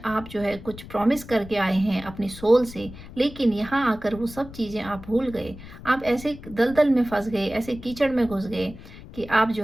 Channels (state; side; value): noise; left; rumble, 15 dB below the sound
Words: आप जो है कुछ प्रॉमिस करके आए हैं अपनी सोल से, लेकिन यहाँ आकर वो सब चीज़ें आप भूल गए। आप ऐसे दलदल में फंस गए, ऐसे कीचड़ में घुस गए कि आप जो